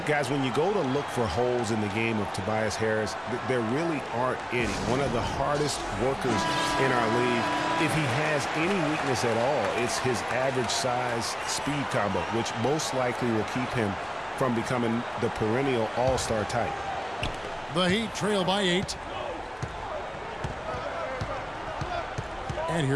guys, when you go to look for holes in the game of Tobias Harris, there really aren't any. One of the hardest workers in our league. If he has any weakness at all, it's his average size speed combo, which most likely will keep him from becoming the perennial all-star type. The Heat trail by 8. And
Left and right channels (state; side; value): identical; both; correlation 1.00